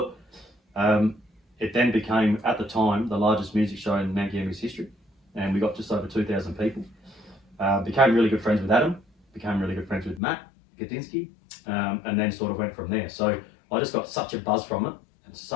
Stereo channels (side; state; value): right; drops out; at 10.2 s